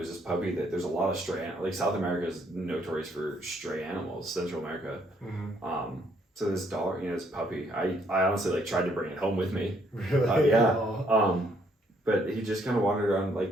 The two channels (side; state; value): both; normal; correlation 0.68